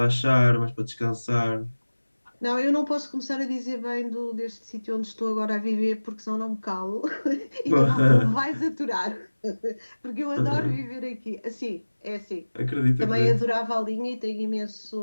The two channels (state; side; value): inverted; both; correlation -1.00